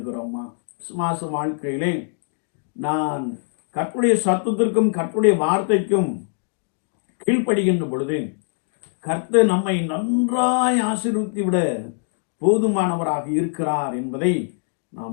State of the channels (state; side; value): silent; right; digital silence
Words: விசுவாச வாழ்க்கையிலே நான் கர்த்தருடைய சத்தத்திற்கும் கர்த்தருடைய வார்த்தைக்கும் கீழ்ப்படுகின்ற பொழுது கர்த்தர் நம்மை நன்றாய் ஆசீர்வதித்து விட போதுமானவராக இருக்கிறார் என்பதை